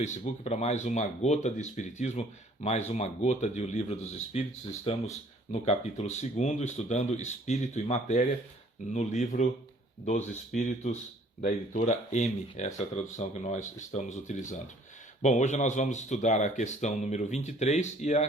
para mais uma gota de Espiritismo, mais uma gota de O Livro dos Espíritos. Estamos no capítulo 2, estudando Espírito e Matéria, no Livro dos Espíritos, da editora M. Essa é a tradução que nós estamos utilizando. Bom, hoje nós vamos estudar a questão número 23 e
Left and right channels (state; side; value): normal; both; correlation 0.57